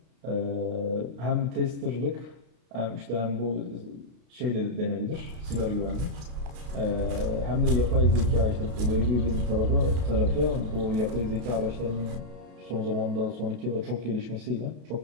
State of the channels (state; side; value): late; left; 32 ms